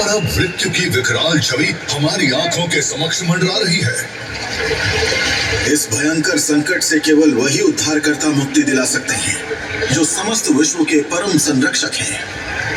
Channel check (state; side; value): identical; both; correlation 1.00